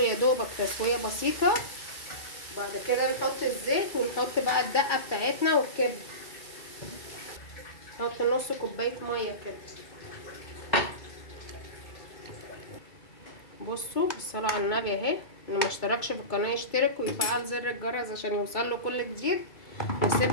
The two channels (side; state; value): right; late; 2.3 ms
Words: يا دوبك تسويه بسيطه. بعد كده نحط الزيت ونحط بقى الدقه بتاعتنا والكبده. نحط نص كوبايه ميه كده. بصوا بالصلاه على النبي اهي، اللي ما اشتركش في القناه يشترك ويفعل زر الجرس عشان يوصل له كل جديد.